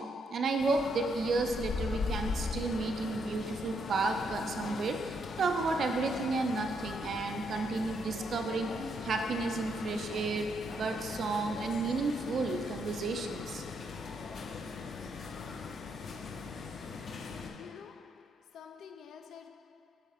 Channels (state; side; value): normal; both; correlation 0.76